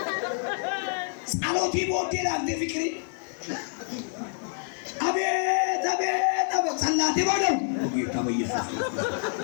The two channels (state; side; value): silent; right; 58 dB below the other